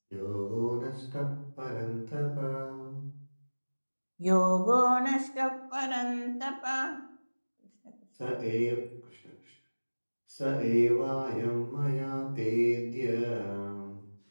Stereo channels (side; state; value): both; inverted; correlation -1.00